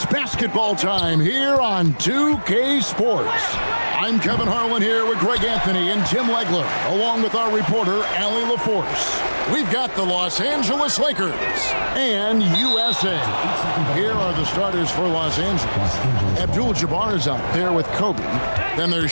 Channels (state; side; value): inverted; both; correlation -1.00